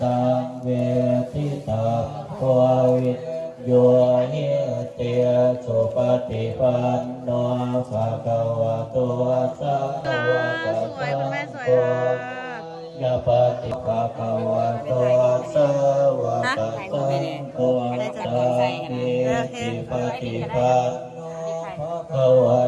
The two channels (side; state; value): both; identical; correlation 1.00